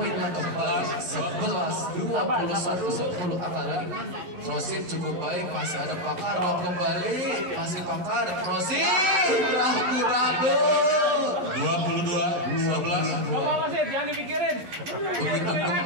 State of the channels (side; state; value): left; late; 11 ms